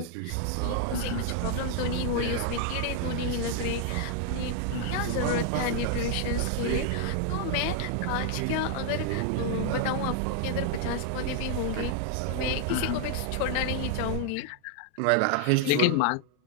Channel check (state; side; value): different; both; correlation 0.00